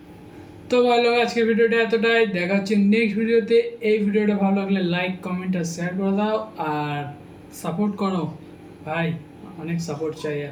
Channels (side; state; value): both; identical; correlation 1.00